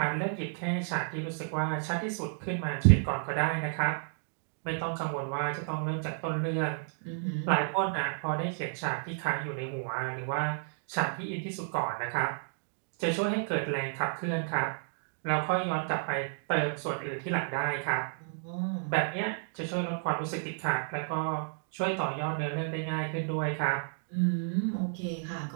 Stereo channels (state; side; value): silent; left; digital silence